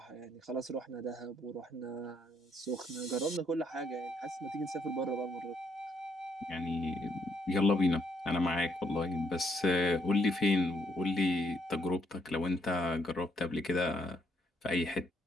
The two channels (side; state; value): both; normal; correlation 0.72